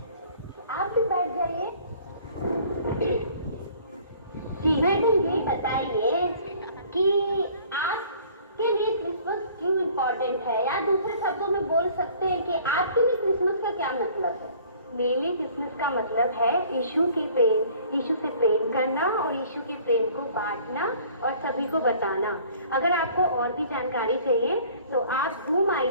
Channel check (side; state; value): both; inverted; correlation -0.53